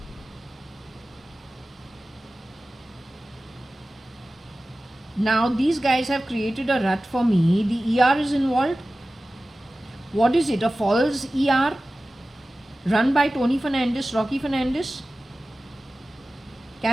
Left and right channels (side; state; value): both; normal; correlation 0.96